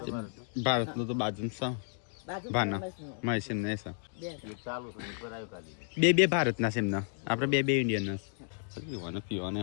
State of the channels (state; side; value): silent; right; digital silence